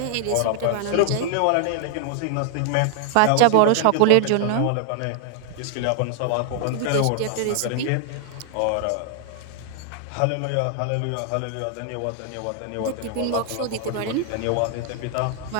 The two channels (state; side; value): different; both; correlation 0.00